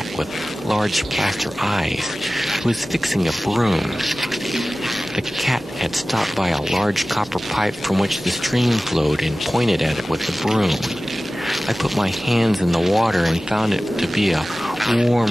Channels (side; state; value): both; normal; correlation 0.97